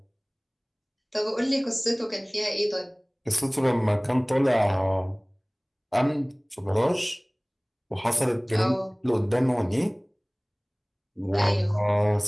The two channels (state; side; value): identical; both; correlation 1.00